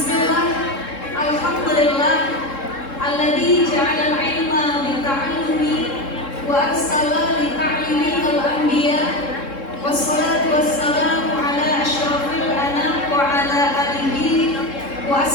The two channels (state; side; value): late; right; 3.7 ms